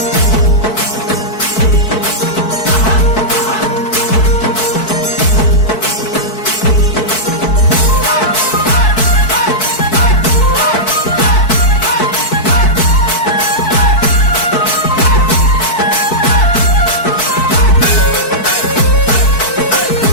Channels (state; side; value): late; right; 4.6 ms